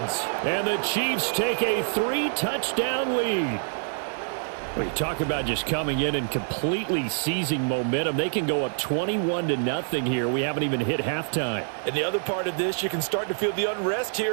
And the Chiefs take a 3-touchdown lead. Well, you talk about just coming in and completely seizing momentum. They can go up 21-0 here. We haven't even hit halftime. And the other part of this, you can start to feel the unrest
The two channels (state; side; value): silent; left; digital silence